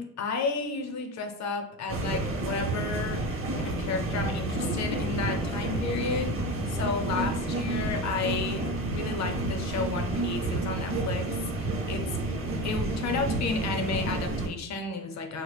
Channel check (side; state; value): both; normal; correlation 0.25